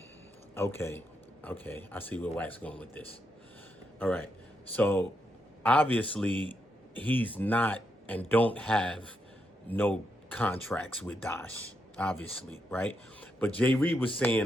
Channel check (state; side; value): normal; both; correlation 0.82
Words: okay, I see where Wack's going with this. All right, so obviously he's not and don't have no contracts with Dosh, obviously, right? But Jay Reed was